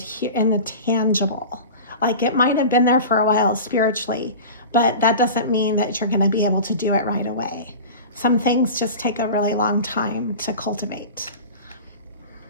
tangible. Like it might have been there for a while spiritually, but that doesn't mean that you're going to be able to do it right away. Some things just take a really long time to cultivate.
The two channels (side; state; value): both; inverted; correlation -0.33